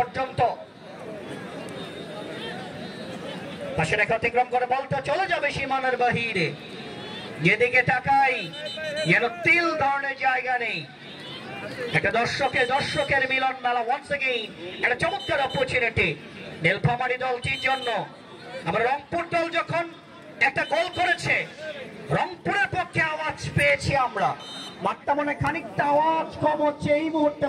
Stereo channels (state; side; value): identical; both; correlation 1.00